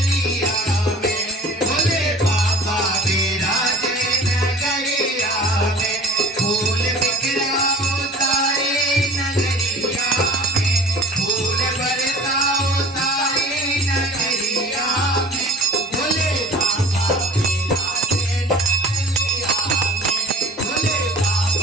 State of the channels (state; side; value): normal; both; correlation 0.44